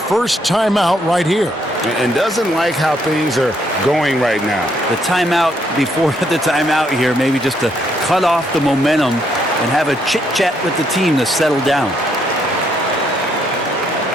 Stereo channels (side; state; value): both; normal; correlation 0.72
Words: timeout right here. And doesn't like how things are going right now. The timeout before the timeout here, maybe just to cut off the momentum and have a chit-chat with the team to settle down.